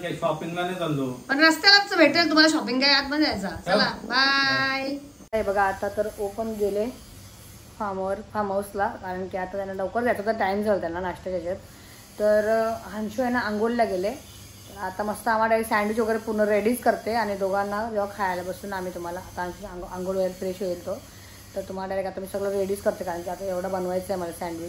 काही शॉपिंगला नाही चाललो, पण रस्त्यालाच भेटेल तुम्हाला. शॉपिंग काय आतमध्ये जायचा. चला बाय. बघा आता तर ओपन गेले फार्म हाऊसला, कारण की आता त्यांना लवकर जायचं तर टाईम झाला त्यांना नाश्त्याच्या ह्याच्यात. तर अंशू आहे ना आंघोळीला गेले. तर आता मस्त आम्हाला सँडविच वगैरे पूर्ण रेडीच करते आणि दोघांना जेव्हा खायला बसून आम्ही तुम्हाला आता अंशू आंघोळ वगैरे फ्रेश होईल तो, तर तुम्हाला डायरेक्ट आता मी सगळं रेडीच करते, कारण की आता एवढं बनवायचं आहे मला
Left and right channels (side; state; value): both; identical; correlation 1.00